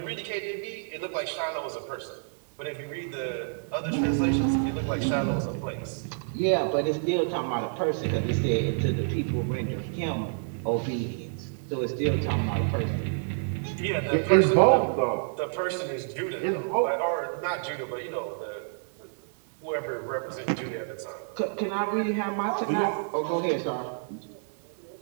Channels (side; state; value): left; silent; digital silence